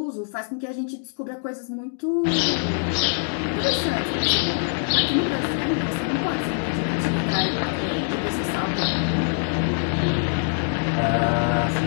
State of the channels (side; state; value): right; silent; 63 dB below the other